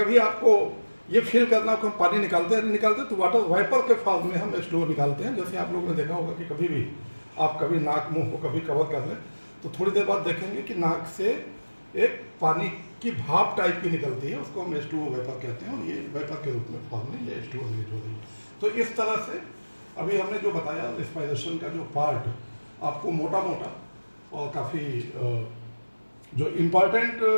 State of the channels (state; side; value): inverted; both; correlation -1.00